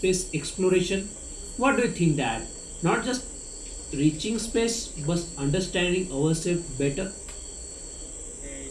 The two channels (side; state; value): both; identical; correlation 1.00